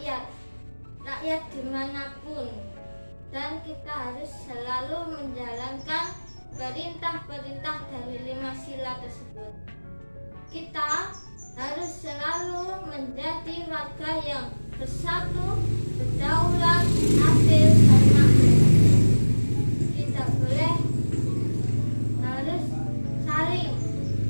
dimanapun, dan kita harus selalu menjalankan perintah-perintah dari 5 sila tersebut. Kita harus selalu menjadi warga yang bersatu, berdaulat, adil, dan makmur. Tidak boleh, harus saling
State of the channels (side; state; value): both; inverted; correlation -1.00